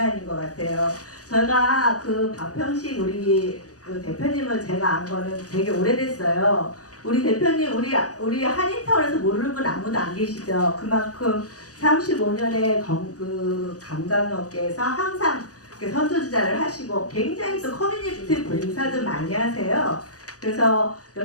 것 같아요. 제가 그 박평식 우리 그 대표님을 제가 안 거는 되게 오래됐어요. 우리 대표님 우리 한인타운에서 모르는 분 아무도 안 계시죠. 그만큼 35년의 그 관광업계에서 항상 선두주자를 하시고 굉장히 또 커뮤니티 봉사도 많이 하세요. 그래서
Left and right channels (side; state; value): right; late; 0.67 ms